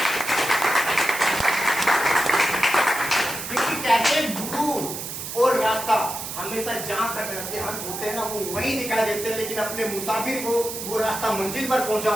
कहते गुरु और रास्ता हमेशा जहां तक रहते हैं हम होते हैं ना, वो वही दिखाई देते हैं, लेकिन अपने मुसाफिर को वो रास्ता मंजिल पर पहुंचा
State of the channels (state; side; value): noise; right; hiss, 7 dB below the sound